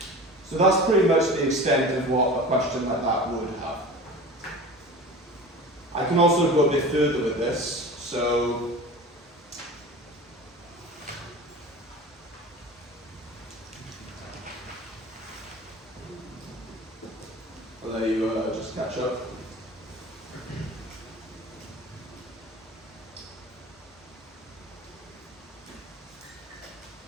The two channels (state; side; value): normal; both; correlation 0.36